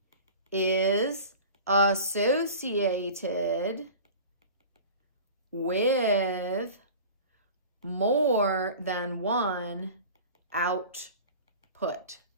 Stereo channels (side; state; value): both; inverted; correlation -0.38